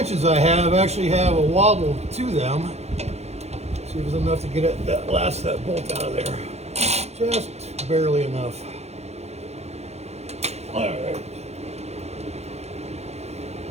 I have actually have a wobble to them. See if there's enough to get that bolt out of there. Just barely enough. All right.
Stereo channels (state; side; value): late; left; 0.31 ms